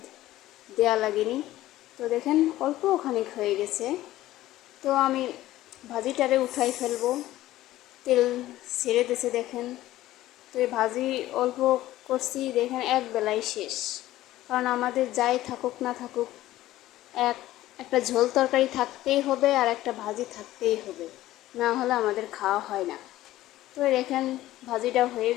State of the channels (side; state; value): right; quieter; 15.3 dB